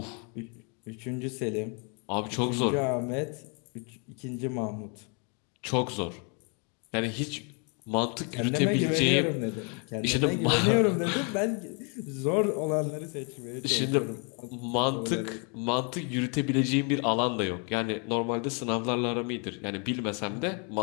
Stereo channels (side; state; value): right; quieter; 36.8 dB